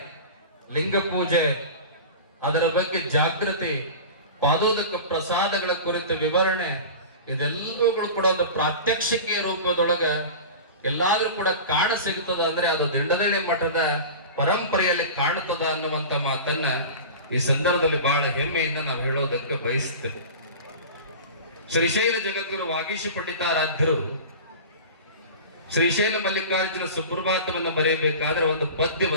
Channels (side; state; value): both; inverted; correlation -0.34